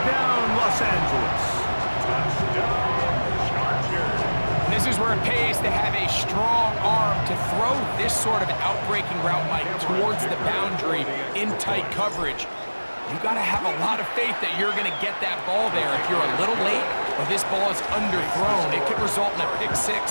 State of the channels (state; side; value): inverted; both; correlation -1.00